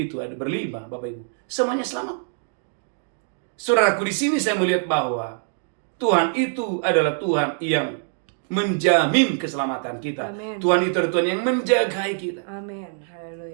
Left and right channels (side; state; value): left; silent; digital silence